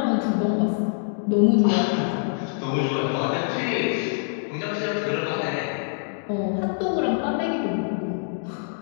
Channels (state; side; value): silent; right; digital silence